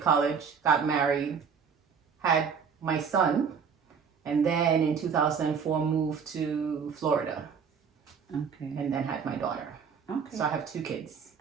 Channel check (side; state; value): left; quieter; 6.5 dB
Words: got married, had my son, and then in 2004 moved to Florida. Okay. And then had my daughter. Okay. So I have 2 kids.